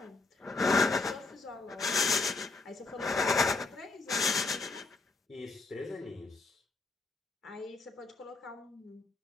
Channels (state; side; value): quieter; right; 3.7 dB